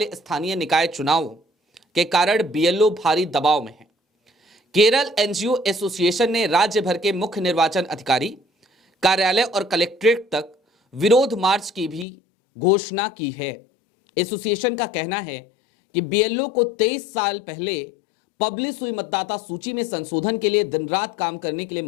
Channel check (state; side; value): drops out; right; at 12.1 s